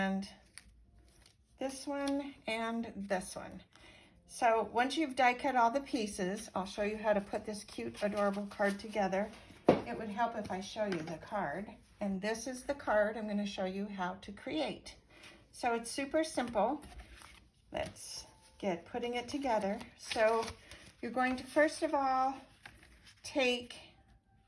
this one and this one. So once you've die cut all the pieces, I'll show you how to put this cute, adorable card together. It would help if I show you the card. And this is the card I'm going to show you how to create. So it's super simple. Let's get putting it together. So you're going to first of all take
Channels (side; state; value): both; identical; correlation 1.00